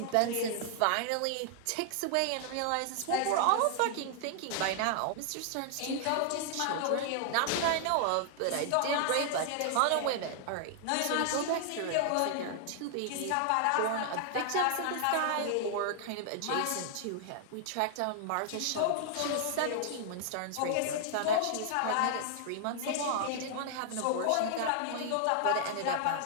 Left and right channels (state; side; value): different; both; correlation -0.01